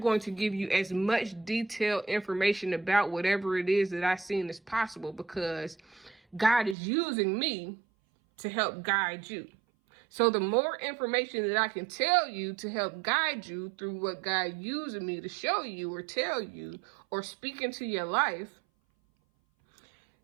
to give you as much detailed information about whatever it is that I've seen as possible, because God is using me to help guide you. So the more information that I can tell you to help guide you through what God using me to show you or tell you or speak into your life,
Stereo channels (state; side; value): drops out; left; at 6.8 s